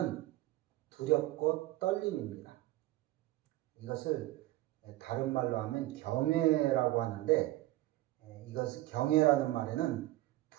두렵고 떨림입니다. 이것을 다른 말로 하면 경외라고 하는데, 이것을 경외라는 말에는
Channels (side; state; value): left; quieter; 17.0 dB